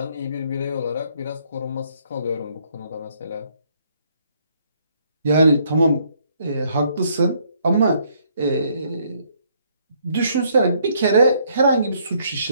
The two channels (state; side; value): inverted; both; correlation -0.67